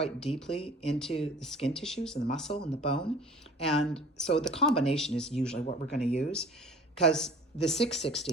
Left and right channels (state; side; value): normal; both; correlation 0.46